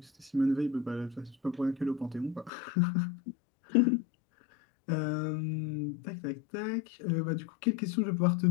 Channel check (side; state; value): right; drops out; at 2.5 s